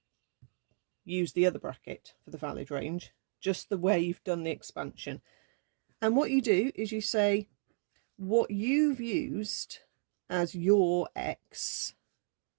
use the other bracket for the valid range, just the way you've done the expansion. And what you do is you say what you've used as your x,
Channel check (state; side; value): silent; left; 55 dB below the other